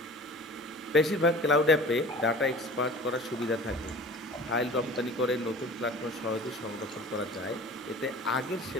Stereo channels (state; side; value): normal; both; correlation 0.43